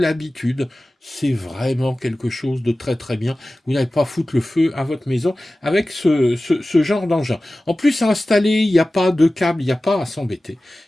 c'est vraiment quelque chose de très très bien. Vous n'allez pas foutre le feu à votre maison avec ce genre d'engin. En plus, à installer, il n'y a pas de câble, il n'y a pas à s'embêter.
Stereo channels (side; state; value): both; normal; correlation 0.96